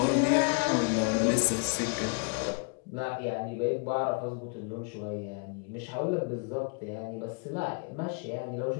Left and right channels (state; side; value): quieter; right; 35.7 dB